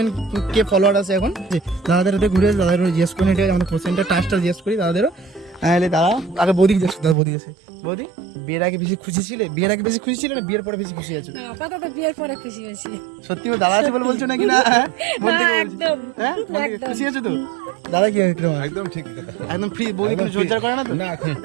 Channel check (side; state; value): left; drops out; at 7.2 s